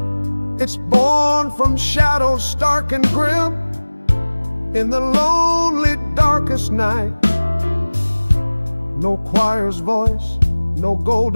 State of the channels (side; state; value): both; inverted; correlation -1.00